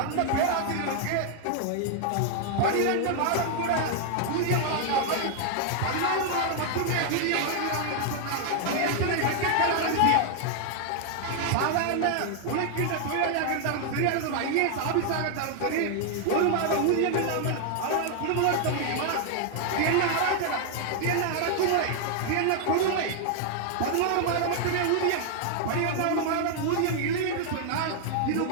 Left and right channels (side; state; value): both; different; correlation 0.00